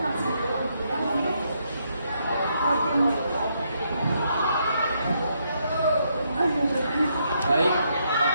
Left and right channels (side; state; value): both; inverted; correlation -0.76